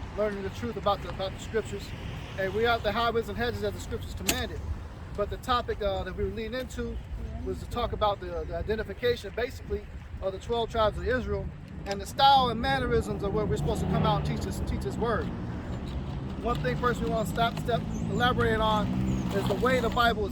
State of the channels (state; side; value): identical; both; correlation 1.00